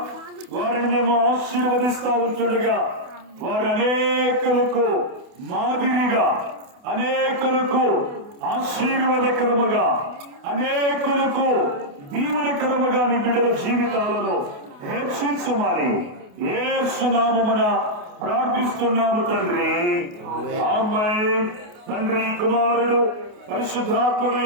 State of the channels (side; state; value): left; late; 28 ms